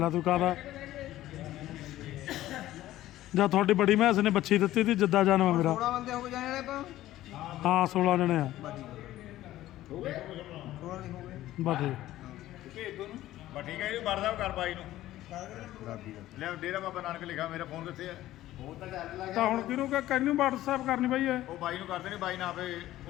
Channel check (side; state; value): right; quieter; 14.7 dB